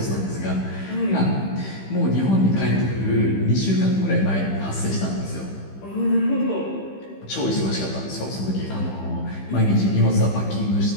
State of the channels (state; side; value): late; right; 15 ms